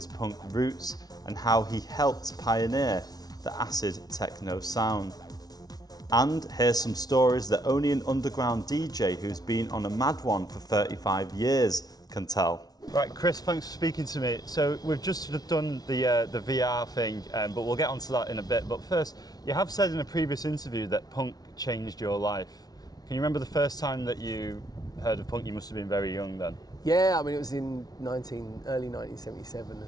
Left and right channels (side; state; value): right; late; 0.19 ms